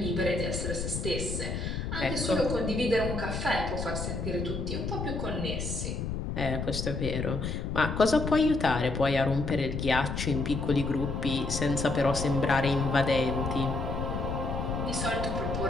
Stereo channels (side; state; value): left; noise; rumble, 3 dB below the sound